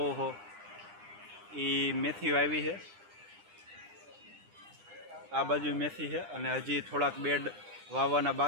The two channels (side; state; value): left; late; 9.9 ms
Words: હો એ મેથી વાવી છે, આ બાજુ મેથી છે અને હજી થોડાક બેડ વાવવાના